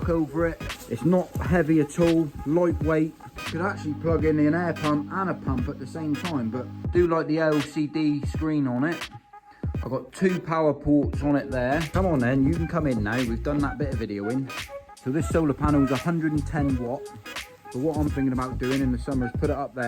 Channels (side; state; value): both; identical; correlation 1.00